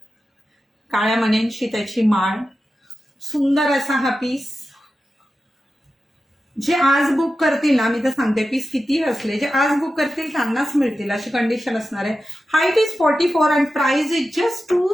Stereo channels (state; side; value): normal; both; correlation 0.92